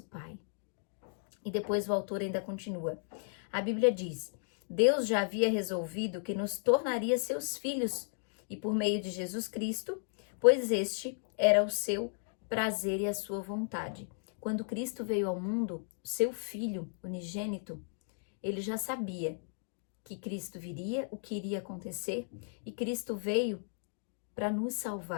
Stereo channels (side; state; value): right; silent; digital silence